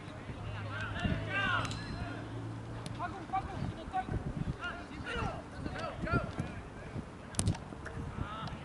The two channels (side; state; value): both; identical; correlation 1.00